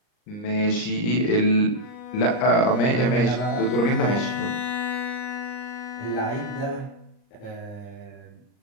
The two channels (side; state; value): right; late; 39 ms